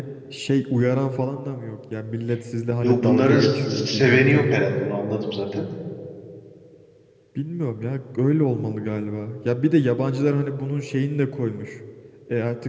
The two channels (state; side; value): identical; both; correlation 1.00